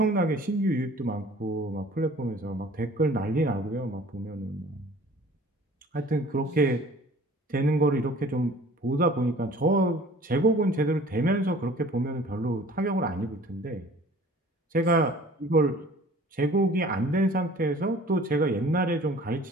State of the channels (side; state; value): both; normal; correlation 0.49